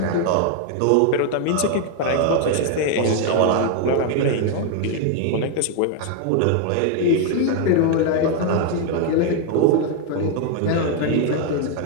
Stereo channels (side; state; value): both; different; correlation 0.00